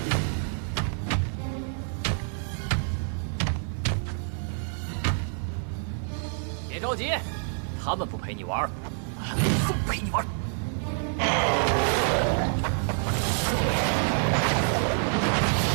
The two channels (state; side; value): silent; left; 60 dB below the other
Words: 别着急，他们不陪你玩，俺不陪你玩。